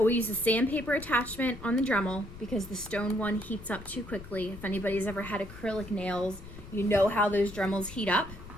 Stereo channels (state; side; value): noise; left; rumble, 15 dB below the sound